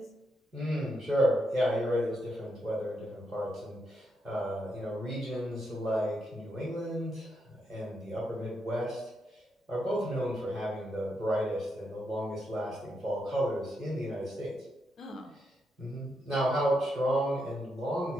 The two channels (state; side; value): normal; both; correlation 0.82